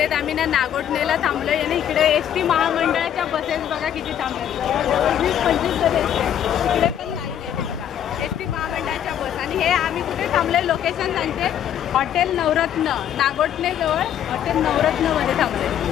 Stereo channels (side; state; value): right; quieter; 10.0 dB